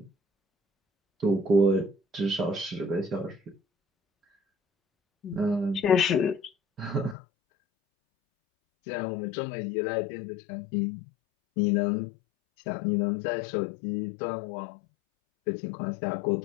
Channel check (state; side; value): drops out; right; at 7.2 s